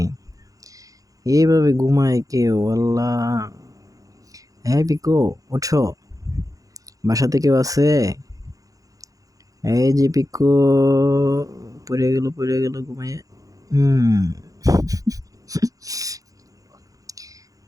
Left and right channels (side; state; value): left; late; 0.17 ms